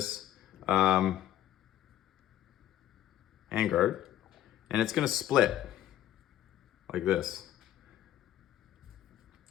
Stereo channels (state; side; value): quieter; right; 12.4 dB